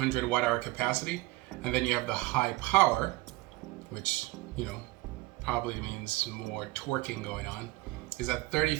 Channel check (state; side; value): quieter; left; 20.7 dB